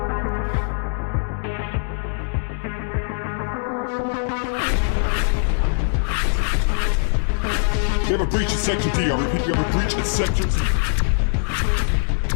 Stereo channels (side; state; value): right; silent; digital silence